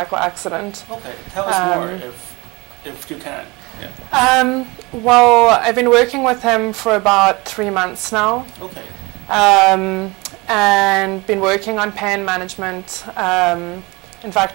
accident. Okay. Tell us more if you can. Yeah. Well, I've been working with him for about 3 months now. Okay. And been working on pain management. In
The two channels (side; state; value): left; quieter; 24.7 dB